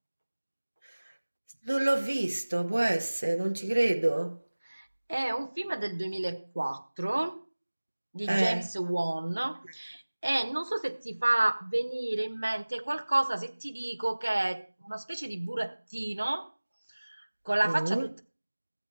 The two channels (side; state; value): both; inverted; correlation -1.00